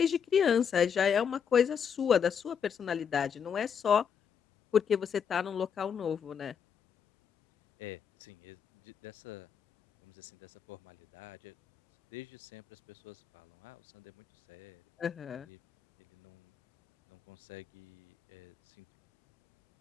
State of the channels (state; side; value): quieter; right; 7.4 dB